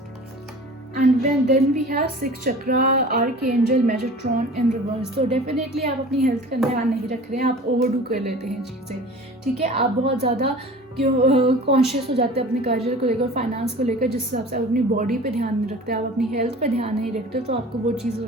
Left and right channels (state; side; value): normal; both; correlation 0.41